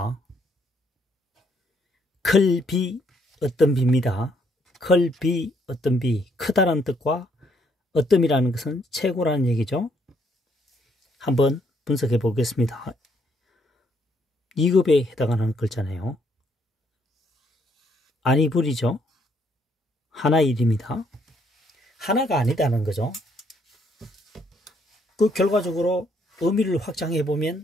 클비 어떤 비입니다. 클비 어떤 비, 크다라는 뜻과 어떤이라는 것은 최고라는 얘기죠. 한번 분석해 보겠습니다. 2급에 해당하는 글자네요. 아니불이죠. 하나일입니다. 하나가 아니다는 거죠. 그 결과적으로 의미를 확장해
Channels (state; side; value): normal; both; correlation 0.70